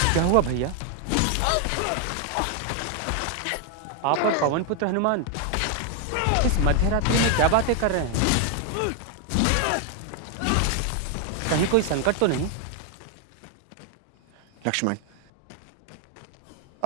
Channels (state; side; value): different; both; correlation 0.01